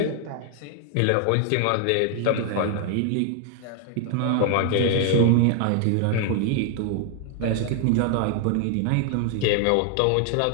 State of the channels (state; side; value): different; both; correlation 0.00